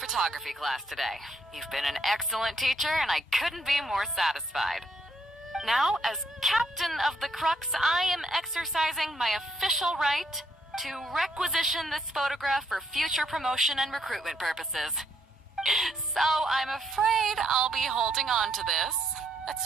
class today. You've been an excellent teacher, and I couldn't be more satisfied. Now, as captain of the Crux, I am exercising my official right to requisition this photograph for future promotion and recruitment purposes. So I'm afraid I'll be holding on to this. That's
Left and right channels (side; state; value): both; normal; correlation 0.73